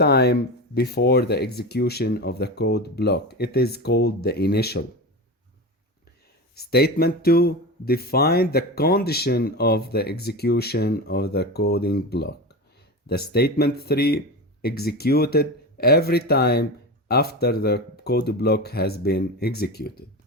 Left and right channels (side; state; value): both; normal; correlation 0.24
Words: before the execution of the code block. It is called the initial. Statement 2 define the condition of the execution of the coding block. The statement 3 executed every time after the code block has been executed.